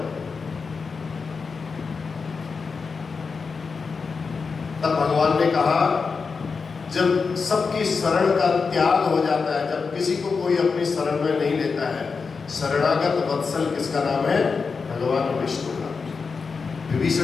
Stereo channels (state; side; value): quieter; right; 5.0 dB